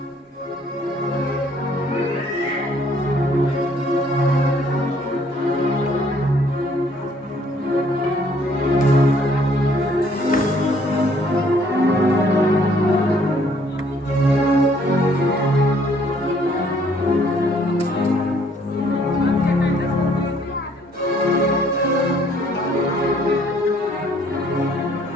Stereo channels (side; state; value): both; normal; correlation 0.63